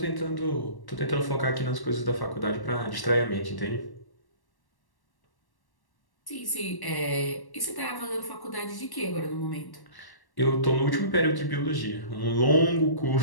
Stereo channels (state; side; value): late; right; 1.1 ms